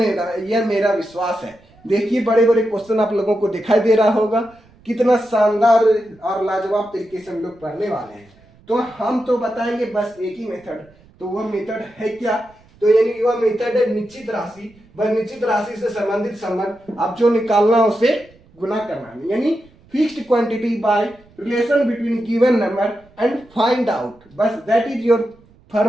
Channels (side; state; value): right; noise; rumble, 29 dB below the sound